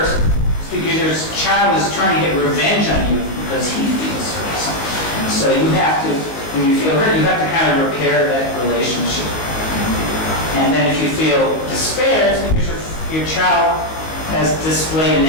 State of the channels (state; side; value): late; right; 19 ms